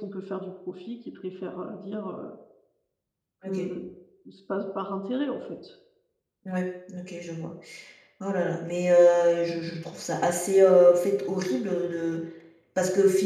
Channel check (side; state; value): both; identical; correlation 1.00